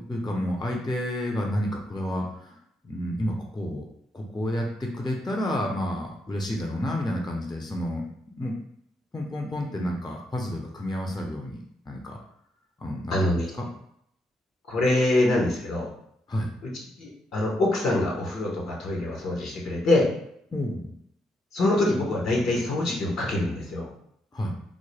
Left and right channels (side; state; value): both; normal; correlation 0.79